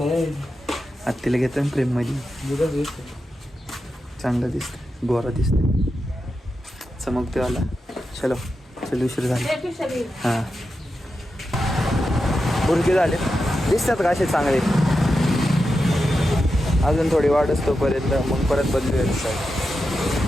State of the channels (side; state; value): both; normal; correlation 0.89